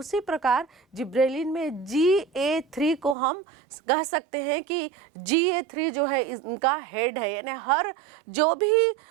प्रकार जिब्रेलिन में GA3 को हम कह सकते हैं कि GA3 जो है इनका हेड है, यानी हर जो भी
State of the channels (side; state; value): left; drops out; at 3.2 s